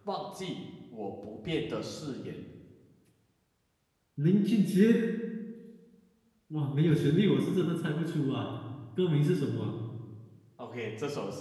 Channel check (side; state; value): both; identical; correlation 1.00